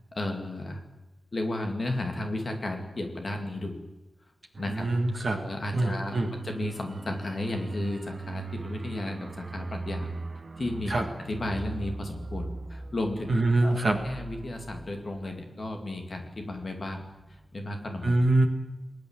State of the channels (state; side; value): normal; both; correlation 0.92